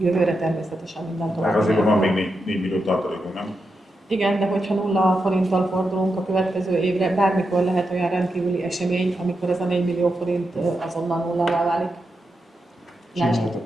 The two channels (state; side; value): normal; both; correlation 0.87